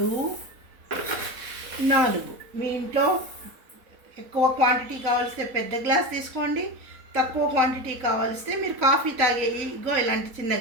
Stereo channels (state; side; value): late; left; 4.1 ms